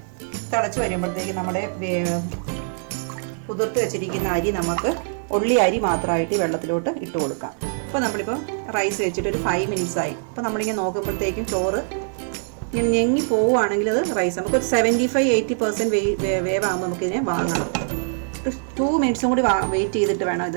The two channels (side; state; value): left; silent; digital silence